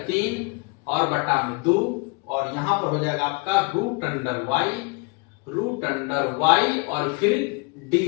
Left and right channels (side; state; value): right; quieter; 30.8 dB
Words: 3 और बटा में 2, और यहां पर हो जाएगा आपका root under y, root under Y और फिर डी